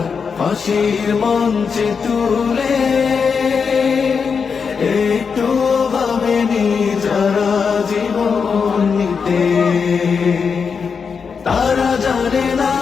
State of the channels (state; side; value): quieter; right; 5.8 dB